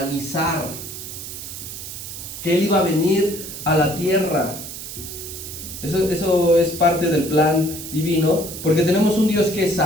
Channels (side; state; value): right; noise; hiss, 10 dB below the sound